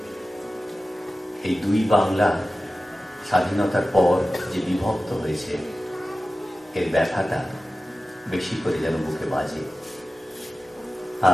এই দুই বাংলা স্বাধীনতার পর যে বিভক্ত হয়েছে এর ব্যথাটা বেশি করে যেন বুকে বাজে।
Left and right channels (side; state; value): both; normal; correlation 0.95